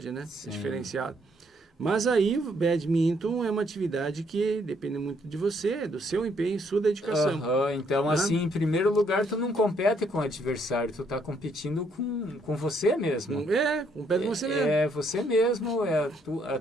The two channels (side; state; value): both; normal; correlation 0.70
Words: né? Sim. É diferenciado. Mas aí o badminton é uma atividade que depende muito de você, do seu empenho, sua dedicação. Então, assim, em primeiro lugar, tu não compete com o adversário, tu está competindo com você mesmo. Compete com você mesmo. É você mesmo, a